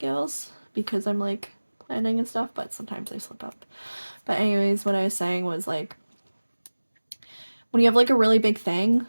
because I'm like planning and stuff, but sometimes I slip up. But anyways, what I was saying was like, when you have like a really big thing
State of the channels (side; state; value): both; inverted; correlation -1.00